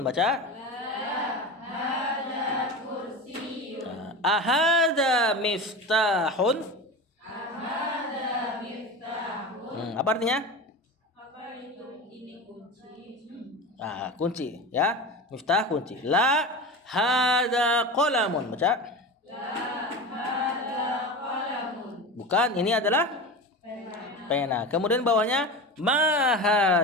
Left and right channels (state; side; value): normal; both; correlation 0.27